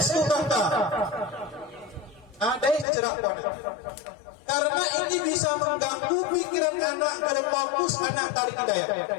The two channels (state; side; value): drops out; right; at 2.9 s